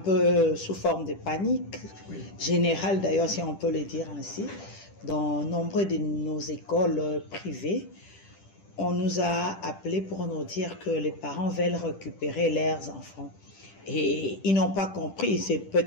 sous forme de panique générale d'ailleurs, si on peut le dire ainsi. Dans nombre de nos écoles privées, on nous a appelés pour nous dire que les parents veulent récupérer leurs enfants. Et ils n'ont pas compris, c'est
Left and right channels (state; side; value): late; right; 10 ms